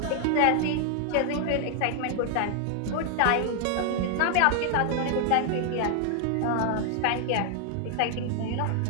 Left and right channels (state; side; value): different; both; correlation 0.00